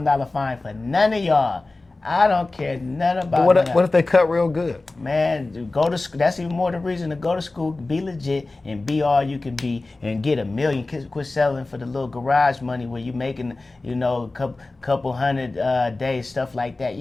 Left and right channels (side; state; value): right; quieter; 3.2 dB